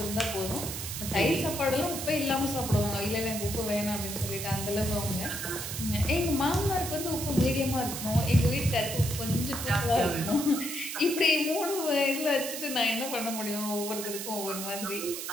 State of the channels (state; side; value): noise; right; hiss, 6 dB below the sound